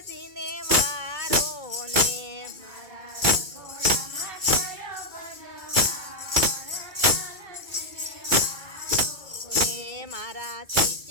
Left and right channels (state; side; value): late; left; 2.3 ms